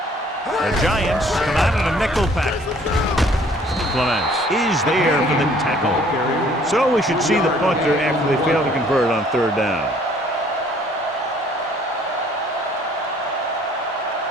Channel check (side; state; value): both; normal; correlation 0.58